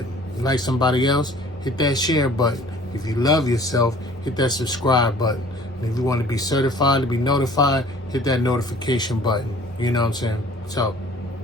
You like somebody else, hit that share button. If you love yourself, hit that subscribe button. And if you want to be certified, to be notified, hit that notification button. You know what I'm saying? So,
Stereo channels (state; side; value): normal; both; correlation 0.51